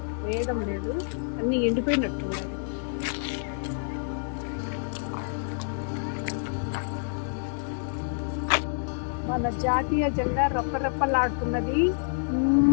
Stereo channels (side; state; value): right; silent; 59 dB below the other